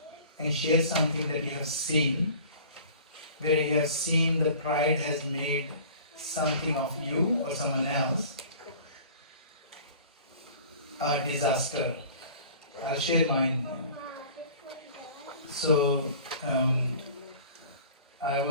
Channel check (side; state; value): both; inverted; correlation -0.45